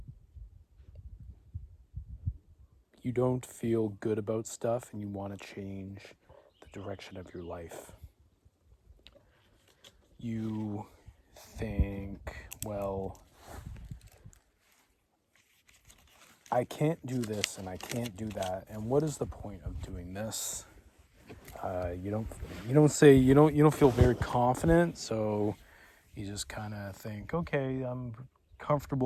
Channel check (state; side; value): identical; both; correlation 1.00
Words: you don't feel good about stuff and you want to change the direction of your life. You think, well, I can't do this and I can't do that, and what is the point of doing this? You don't feel very confident, so you just kind of think, okay, I'm